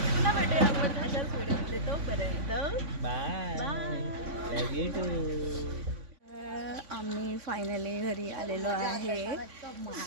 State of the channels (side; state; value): left; late; 3.5 ms